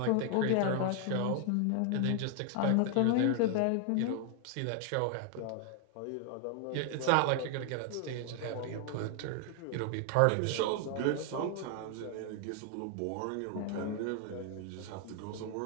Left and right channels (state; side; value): different; both; correlation 0.00